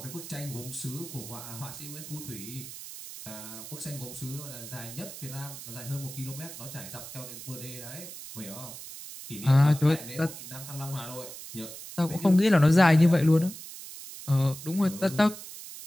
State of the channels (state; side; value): noise; right; hiss, 12 dB below the sound